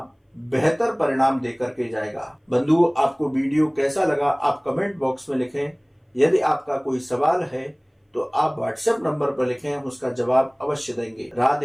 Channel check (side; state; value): both; identical; correlation 1.00